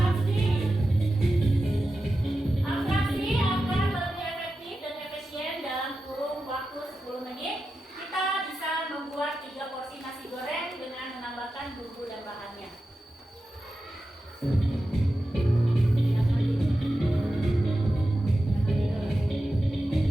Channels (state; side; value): normal; both; correlation 0.92